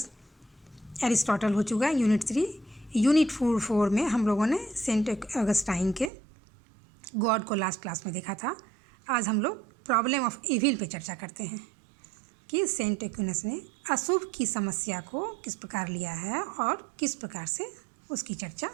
Aristotle हो चुका है। यूनिट 3, यूनिट 4 में हम लोगों ने सेंट ऑगस्टाइन के गॉड को लास्ट क्लास में देखा था। आज हम लोग प्रॉब्लम ऑफ इविल पे चर्चा करते हैं कि सेंट एक्विनस ने अशुभ की समस्या को किस प्रकार लिया है और किस प्रकार से उसकी चर्चा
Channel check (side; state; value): left; drops out; at 6.1 s